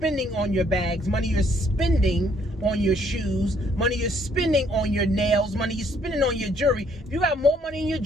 on your bags, money you're spending on your shoes, money you're spending on your nails, money you're spending on your jewelry. If you got more money in your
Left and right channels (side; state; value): both; normal; correlation 0.66